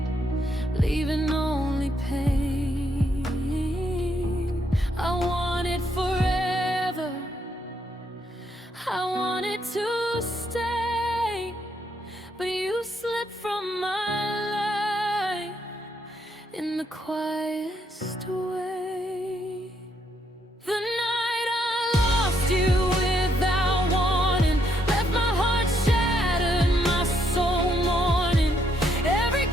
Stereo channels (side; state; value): both; normal; correlation 0.74